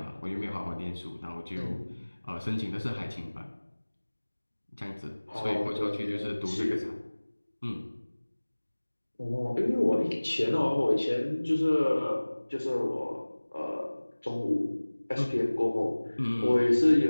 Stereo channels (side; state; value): both; inverted; correlation -1.00